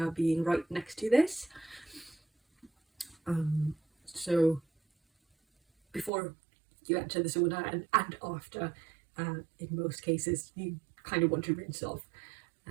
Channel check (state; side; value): drops out; left; at 6.1 s